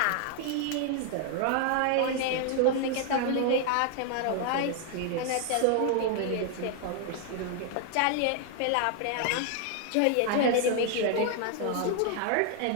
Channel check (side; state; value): both; different; correlation 0.00